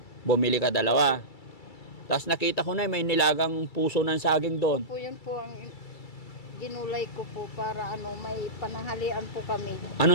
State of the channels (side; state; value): right; late; 2.3 ms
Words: Bumili ka 2. Tapos nakita ko na may nilagang puso ng saging doon. Po yun po ang ginulay ko po para may pananghalian po kami.